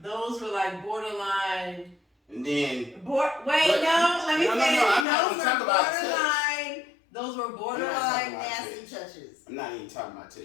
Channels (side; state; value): right; drops out; at 5.1 s